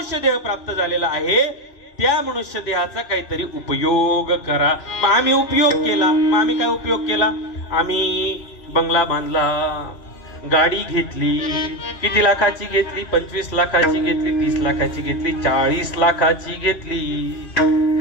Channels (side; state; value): right; late; 2.4 ms